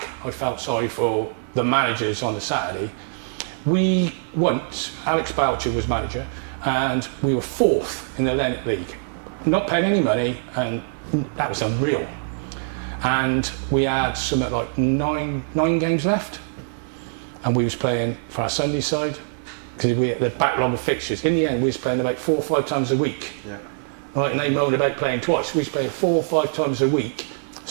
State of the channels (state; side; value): silent; left; 63 dB below the other